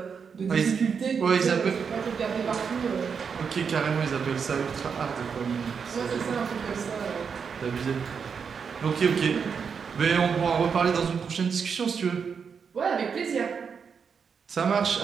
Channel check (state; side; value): quieter; left; 6.3 dB